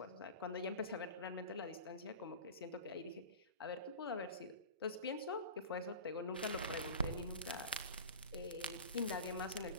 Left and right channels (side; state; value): both; inverted; correlation -0.34